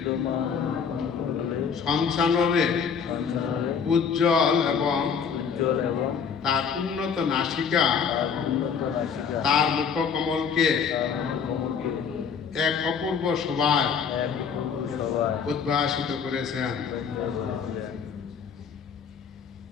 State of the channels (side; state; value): right; quieter; 6.6 dB